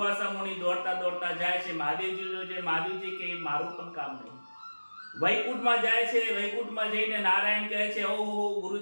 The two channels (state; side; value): inverted; both; correlation -1.00